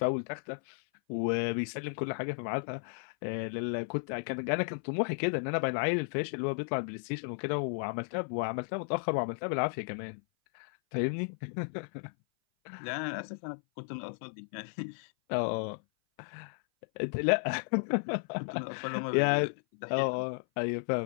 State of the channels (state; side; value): silent; right; 55 dB below the other